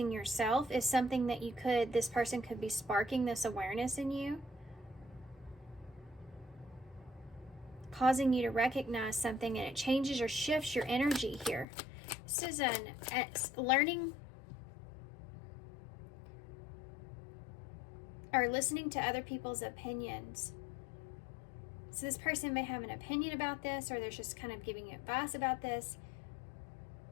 yourself is something that this person could be sparking this awareness in you. Causing you to recognize something, and it changes or shifts your energy here. This is learning or listening to other people's opinions. So this person may have an opinion about this, or they're just kind of giving you advice about this.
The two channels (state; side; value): drops out; right; at 11.7 s